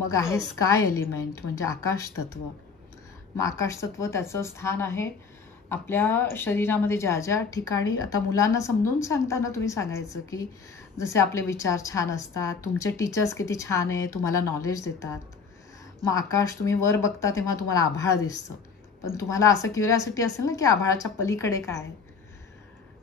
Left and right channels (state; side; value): quieter; right; 5.3 dB